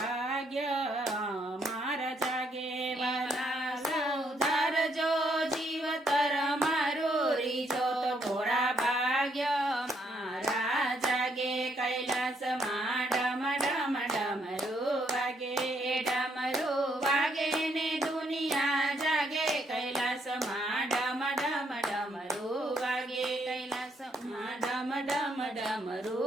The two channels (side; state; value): both; normal; correlation 0.73